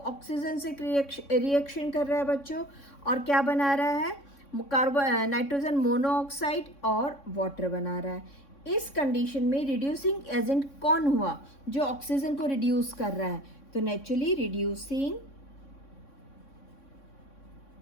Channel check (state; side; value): late; right; 3.6 ms